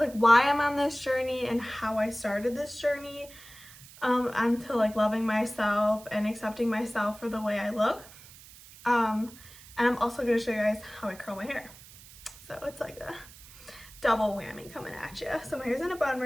why I'm on this journey and how I started this journey onto like loving myself and accepting myself for the way I look. And I'm also going to show you guys how I curl my hair. So it's like a double whammy coming at you. So my hair's in a bun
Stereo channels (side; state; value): right; noise; hiss, 20 dB below the sound